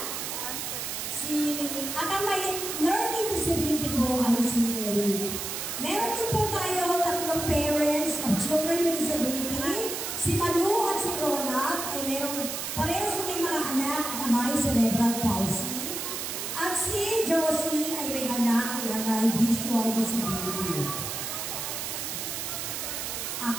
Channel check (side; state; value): right; noise; hiss, 4 dB below the sound